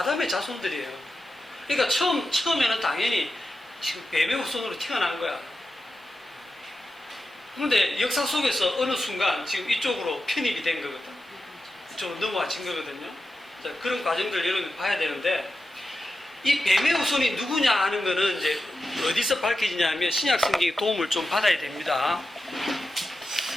자손들이에요. 그러니까 처음에는 당연히 지금 뱀의 후손으로 태어난 거야. 그런데 역사 속에서 어느 순간 지금 이쪽으로 편입이 된 거거든. 이쪽으로 넘어와진 거거든요. 자, 그런 과정들 여러분이 봐야 되는데, 이 뱀의 후손이 누구냐 하는 거는 이제 어디서 밝혀지냐면 신약 성경의 도움을 좀 받아야 됩니다.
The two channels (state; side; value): normal; both; correlation 0.91